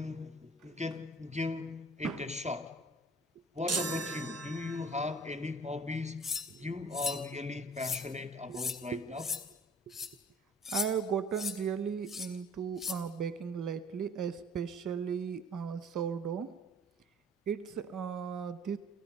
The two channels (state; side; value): normal; both; correlation 0.49